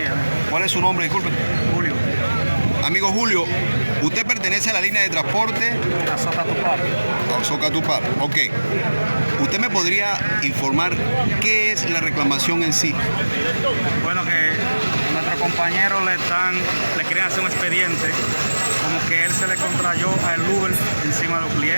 ¿Cuál es su nombre? Disculpe. Julio. Amigo Julio, usted pertenece a la línea de transporte A Socatupar. Socatupar. Ok. ¿Usted me podría informar qué es la reclamación en sí? Bueno, que nuestro compañero le quieren hacer un expediente, como que él se le contrayó al Uber encima de los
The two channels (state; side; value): inverted; both; correlation -1.00